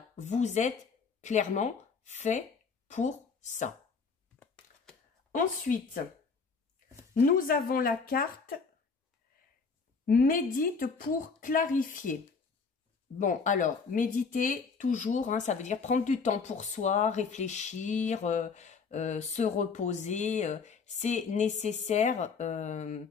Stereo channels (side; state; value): right; quieter; 5.1 dB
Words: vous êtes clairement fait pour ça. Ensuite, nous avons la carte « Médite pour clarifier ». Bon, alors, méditer, toujours, hein, ça veut dire prendre du temps pour soi, réfléchir, se reposer. C'est nécessaire,